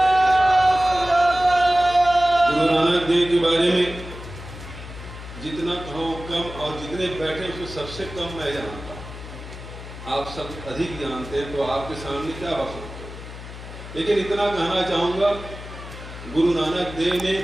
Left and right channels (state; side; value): noise; left; hum, 12 dB below the sound